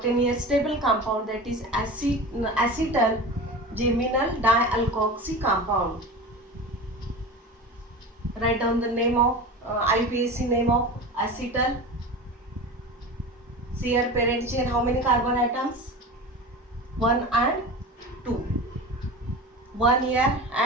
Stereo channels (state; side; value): normal; both; correlation 0.31